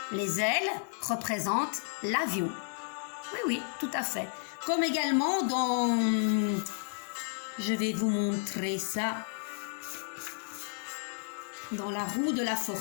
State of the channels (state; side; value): silent; right; 56 dB below the other